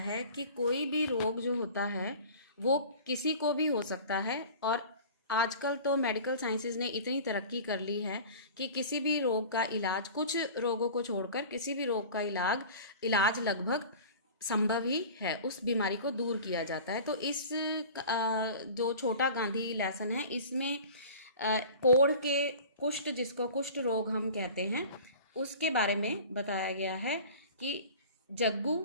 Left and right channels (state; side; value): inverted; both; correlation -0.40